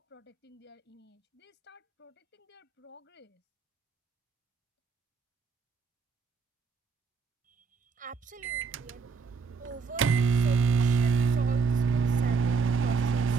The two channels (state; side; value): quieter; left; 5.2 dB